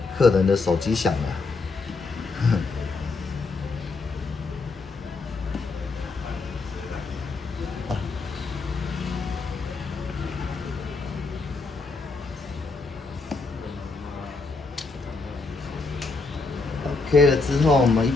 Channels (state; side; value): quieter; right; 3.9 dB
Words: 客人的手机响了。OK 了之后，我们一